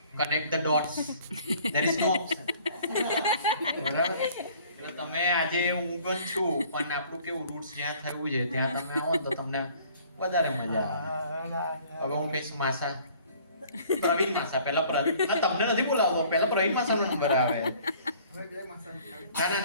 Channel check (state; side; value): inverted; both; correlation -0.54